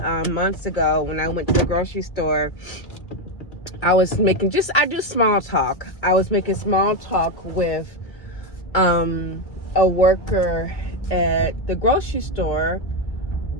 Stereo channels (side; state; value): right; late; 1.8 ms